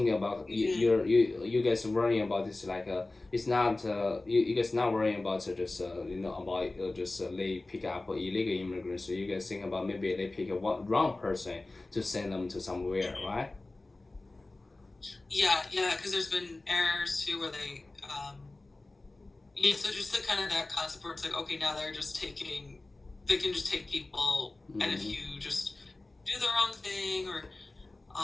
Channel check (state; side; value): quieter; right; 3.0 dB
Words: about you guys worrying about this like it's not you guys not worrying about just about just they pick up illegal immigrants. So you guys think about maybe they pick a wrong person to send them to somewhere, right? Yeah, because there's been errors too where they so just the kind of that concept where it's like, okay, now they can just take people, and if you just do the wrong thing or